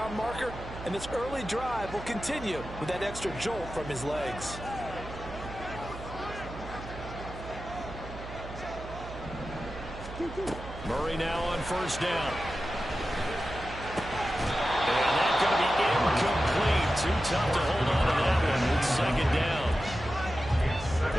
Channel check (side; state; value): right; noise; hum, 12 dB below the sound